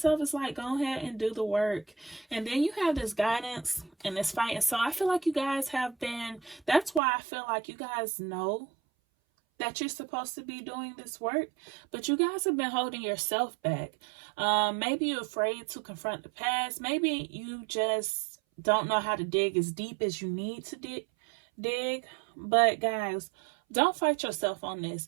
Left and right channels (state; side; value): drops out; left; at 7.0 s